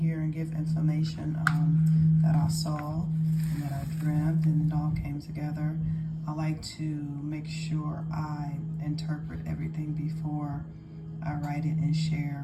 and give information that I saw and that I dreamt, and it all came together. I like to make sure I interpret everything before I write it and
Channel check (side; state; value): both; identical; correlation 1.00